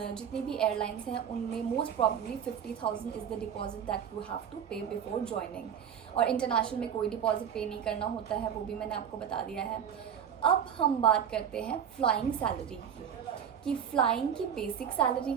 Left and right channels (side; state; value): left; quieter; 8.3 dB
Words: जितनी भी एयरलाइंस हैं, उनमें most probably 50,000 is the deposit that you have to pay before joining. और इंटरनेशनल में कोई डिपॉजिट पे नहीं करना होता है, वो भी मैंने आपको बता दिया है। अब हम बात करते हैं फ्लाइंग सैलरी की, कि फ़्लाइंग की बेसिक सैलरी